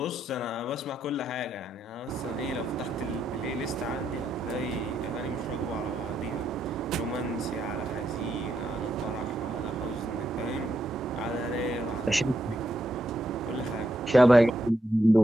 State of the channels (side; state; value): both; normal; correlation 0.80